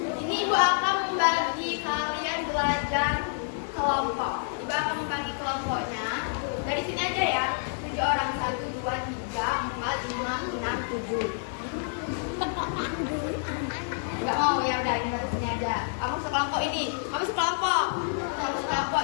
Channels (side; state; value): right; silent; 59 dB below the other